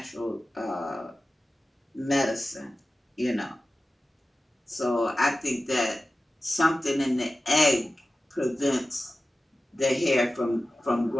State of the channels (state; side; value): normal; both; correlation 0.95